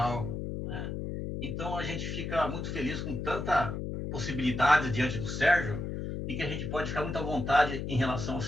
né? Então, a gente fica muito feliz com tanta possibilidade diante do Sérgio e que a gente pode ficar muito à vontade em relação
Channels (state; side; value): noise; left; hum, 4 dB below the sound